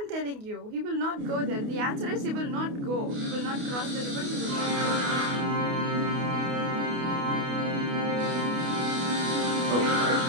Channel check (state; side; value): late; left; 28 ms